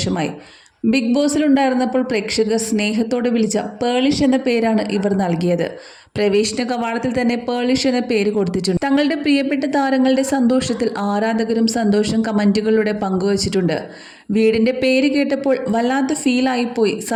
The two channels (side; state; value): both; identical; correlation 1.00